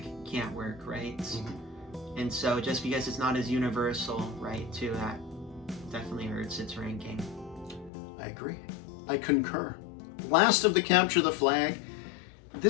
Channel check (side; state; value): right; drops out; at 7.9 s